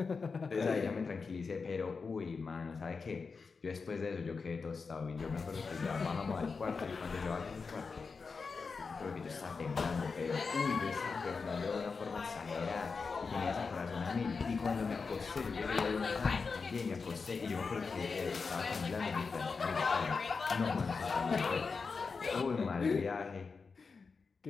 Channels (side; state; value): right; quieter; 4.8 dB